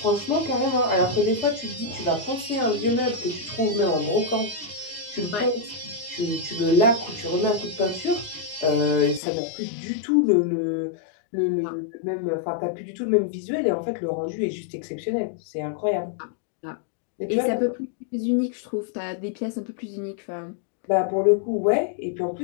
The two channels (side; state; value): right; drops out; at 9.2 s